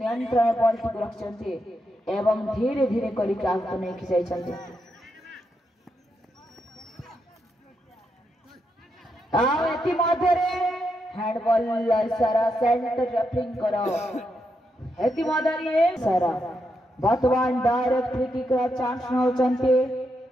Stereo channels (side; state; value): both; normal; correlation 0.82